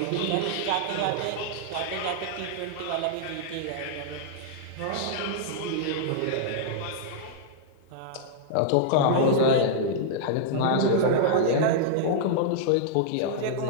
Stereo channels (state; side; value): different; both; correlation -0.01